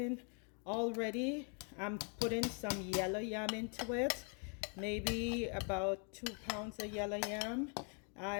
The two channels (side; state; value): right; quieter; 39.9 dB